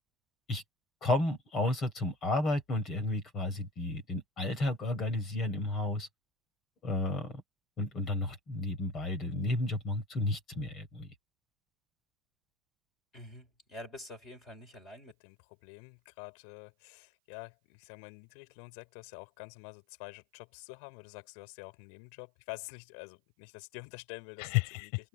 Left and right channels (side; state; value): right; drops out; at 15.2 s